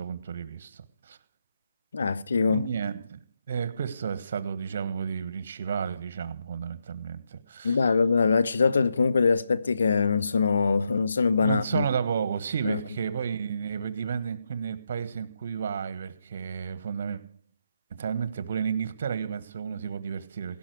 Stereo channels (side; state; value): both; inverted; correlation -0.81